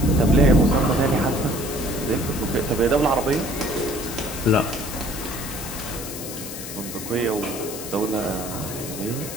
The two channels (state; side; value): noise; left; hiss, 9 dB below the sound